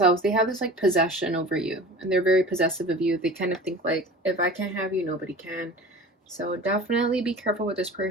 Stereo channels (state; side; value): normal; both; correlation 0.38